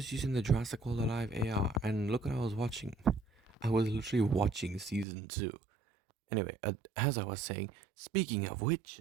using the Jurassic World Alive AR, and look what I was watching. I was literally watching season two. Anyway, as I was saying, speaking of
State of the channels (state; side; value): drops out; left; at 5.1 s